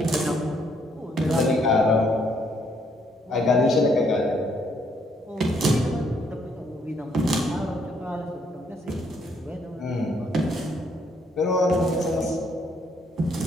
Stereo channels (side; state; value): both; normal; correlation 0.70